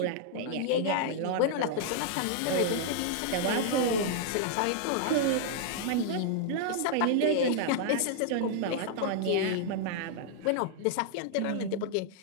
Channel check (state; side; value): different; both; correlation -0.01